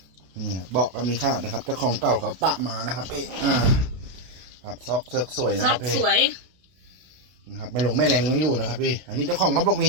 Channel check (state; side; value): late; left; 32 ms